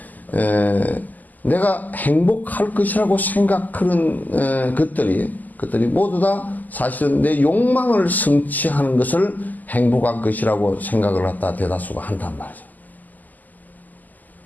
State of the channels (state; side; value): late; right; 0.082 ms